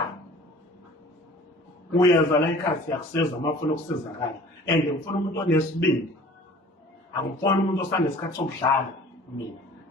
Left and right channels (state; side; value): normal; both; correlation 0.47